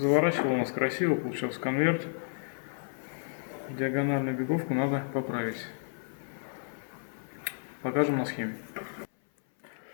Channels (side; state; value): right; silent; 57 dB below the other